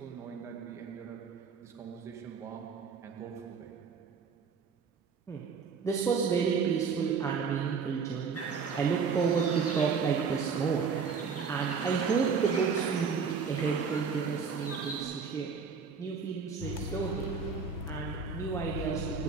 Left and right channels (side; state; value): left; quieter; 5.7 dB